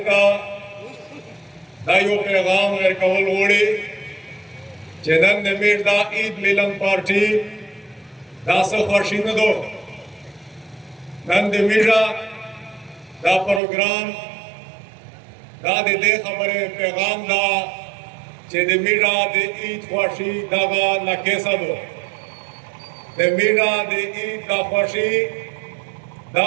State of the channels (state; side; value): drops out; left; at 13.6 s